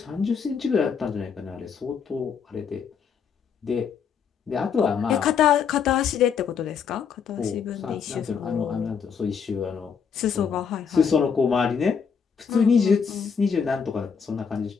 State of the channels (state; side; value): quieter; right; 6.6 dB